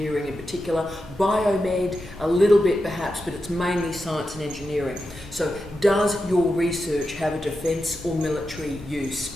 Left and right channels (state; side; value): normal; both; correlation 0.89